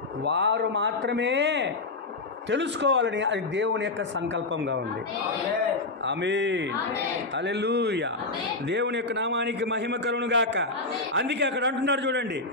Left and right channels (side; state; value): right; quieter; 3.3 dB